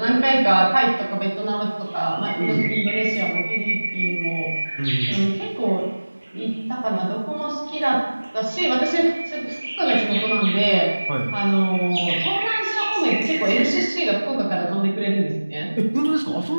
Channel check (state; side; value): inverted; both; correlation -1.00